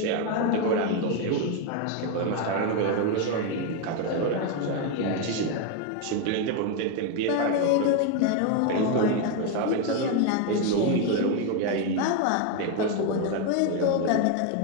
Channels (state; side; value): different; both; correlation 0.02